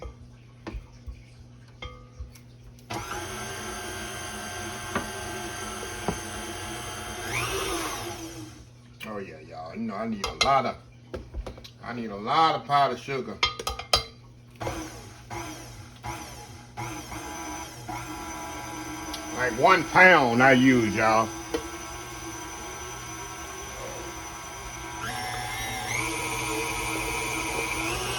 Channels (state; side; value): identical; both; correlation 1.00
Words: Oh yeah, y'all. You know I need a lot of powdered sugar. Like 1 pound I use, y'all.